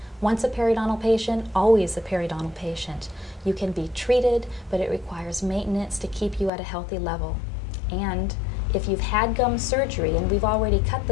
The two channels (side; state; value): right; drops out; at 6.5 s